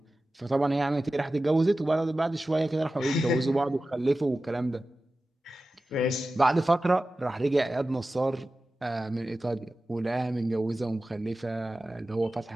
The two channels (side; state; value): both; normal; correlation 0.95